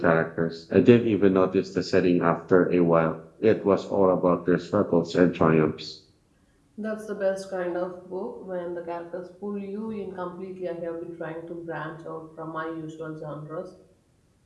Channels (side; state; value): both; identical; correlation 1.00